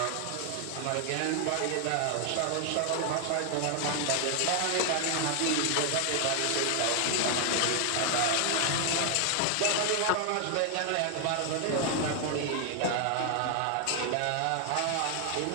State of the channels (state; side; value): different; both; correlation 0.00